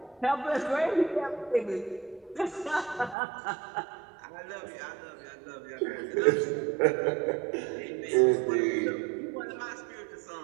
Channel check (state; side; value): drops out; left; at 3.2 s